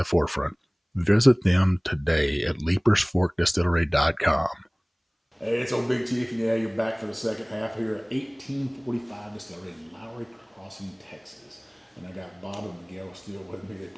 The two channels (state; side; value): identical; both; correlation 1.00